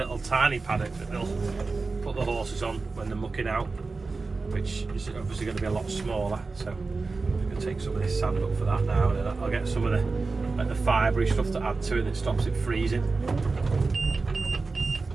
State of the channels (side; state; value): left; quieter; 4.0 dB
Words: tiny paddock that they'll put the horses on when they're mucking out, which is obviously going to be a lot smaller. So I'm going to take some of this sand up for that now, and then I'll get some of the fibrey stuff to add to it that stops it freezing.